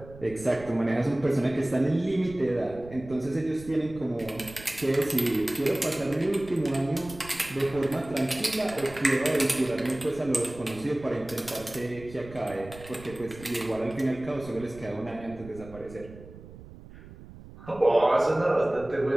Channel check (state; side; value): noise; right; rumble, 17 dB below the sound